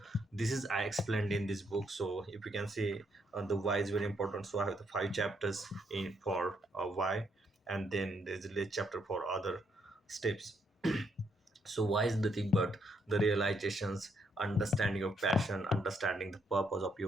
this is I explained in this book. So if you can see, the why is very important. So I have the 5 chapters in for why, and then there's a little chapter for other steps. So why is the thing but the realizations, understanding your passion, understanding the purpose of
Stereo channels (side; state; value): both; normal; correlation 0.75